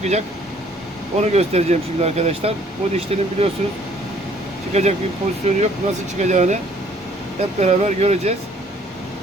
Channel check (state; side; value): normal; both; correlation 0.59